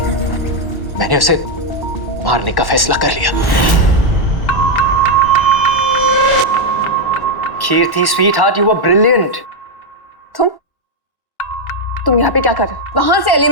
मैंने उसे मारने का फैसला कर लिया। कीर्ति स्वीटहार्ट, यू वर ब्रिलियंट। तुम यहाँ पे क्या कर रहे हो? वहां से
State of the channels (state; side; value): late; right; 1.1 ms